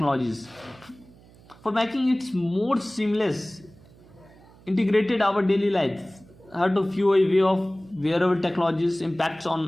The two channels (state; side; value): noise; right; hum, 25 dB below the sound